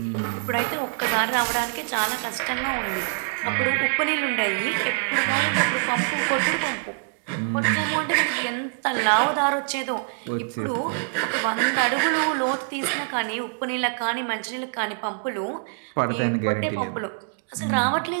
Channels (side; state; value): left; silent; digital silence